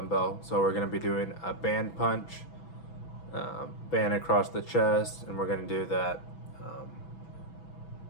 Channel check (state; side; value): late; right; 6.1 ms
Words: So, we're going to be doing a band punch. Band across the chest, and we're going to do that